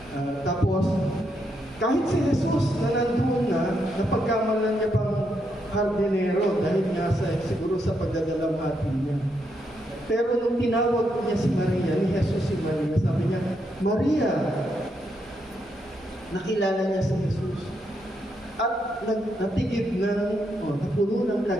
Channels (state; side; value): normal; both; correlation 0.79